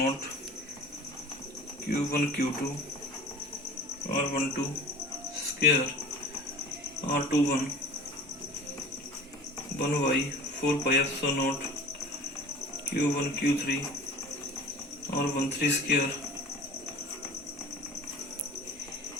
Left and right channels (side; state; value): both; normal; correlation 0.40